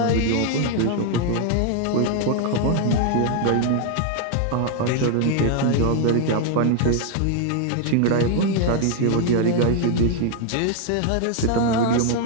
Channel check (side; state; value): both; different; correlation 0.00